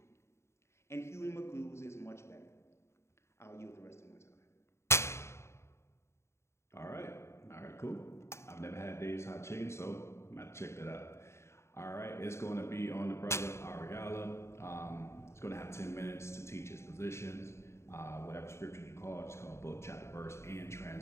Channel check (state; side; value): late; right; 0.13 ms